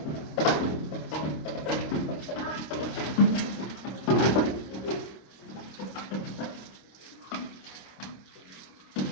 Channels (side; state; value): right; late; 26 ms